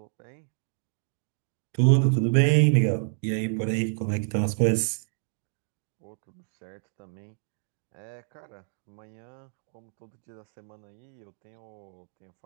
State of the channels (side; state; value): left; silent; digital silence